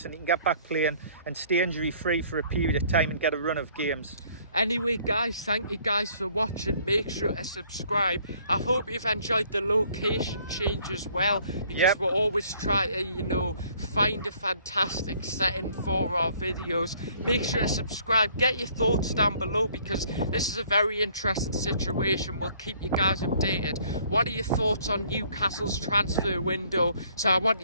and he can get back playing and stay injury free for a period of time and get a run of games. Anyway, guys, thank you guys for watching. Make sure to subscribe. I hope you've enjoyed the location change as well, because we'll always try to, find a fantastic setting for our videos. make sure to subscribe. Get your thoughts down below, because this is a very interesting situation. We'll keep you guys updated. What are your thoughts on Newcastle's transfer window? So I want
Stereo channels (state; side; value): inverted; both; correlation -0.60